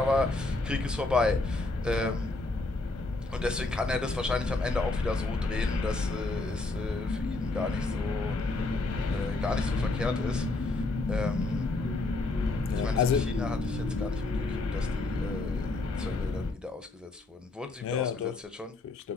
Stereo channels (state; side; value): quieter; right; 3.2 dB